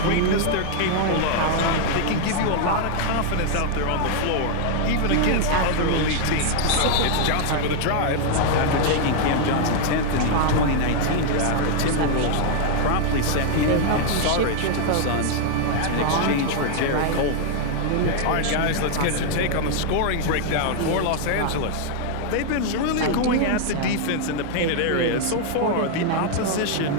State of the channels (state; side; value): different; both; correlation 0.00